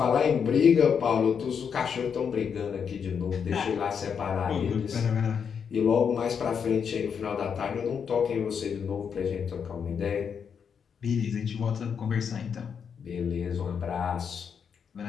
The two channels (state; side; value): quieter; right; 6.9 dB